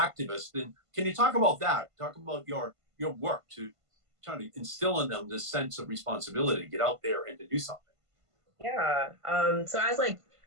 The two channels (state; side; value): late; left; 1.5 ms